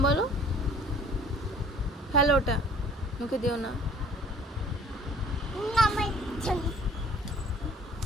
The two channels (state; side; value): normal; both; correlation 0.52